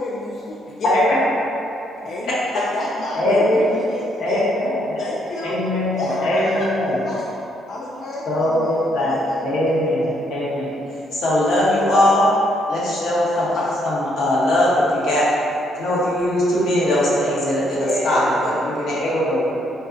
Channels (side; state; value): both; normal; correlation 0.72